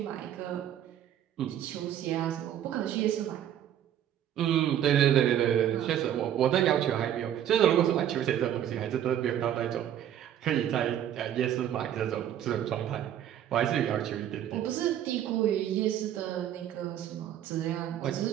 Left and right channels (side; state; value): left; quieter; 10.7 dB